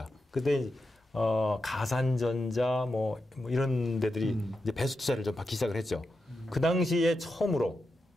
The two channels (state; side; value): normal; both; correlation 0.88